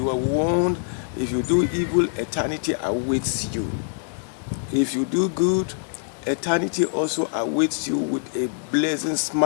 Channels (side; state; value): right; silent; digital silence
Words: were warned if you do evil, eternity awaits you. If you do good, eternity also awaits you with a blessing